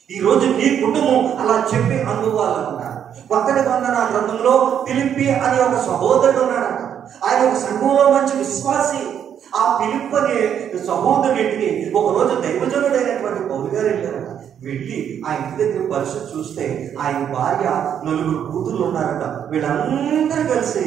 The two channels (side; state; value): left; quieter; 8.9 dB